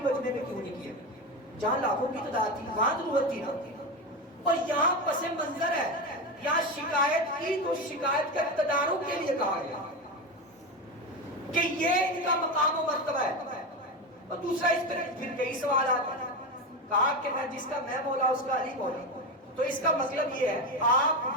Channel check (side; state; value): both; normal; correlation 0.18